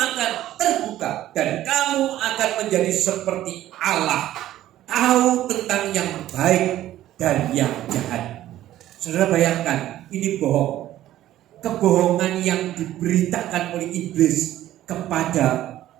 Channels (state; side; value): quieter; left; 13.6 dB